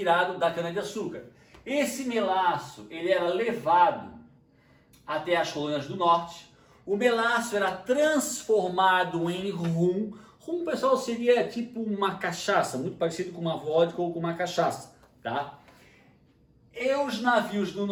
da cana-de-açúcar. Esse melaço, ele era levado até as colônias do norte. O melaço era transformado em rum. Rum, pessoal, seria tipo uma cachaça, muito parecido com uma vodka ou com uma cachaça, tá? E os navios do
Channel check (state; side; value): identical; both; correlation 1.00